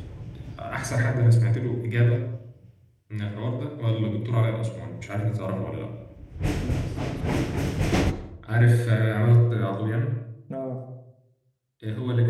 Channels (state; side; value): identical; both; correlation 1.00